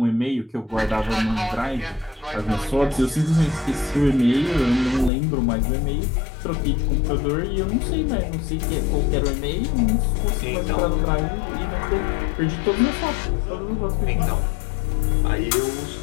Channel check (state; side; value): drops out; right; at 5.1 s